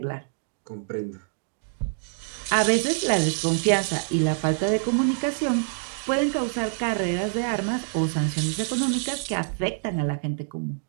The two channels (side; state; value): left; silent; digital silence